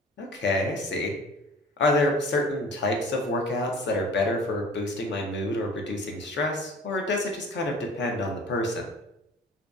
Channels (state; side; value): normal; both; correlation 0.45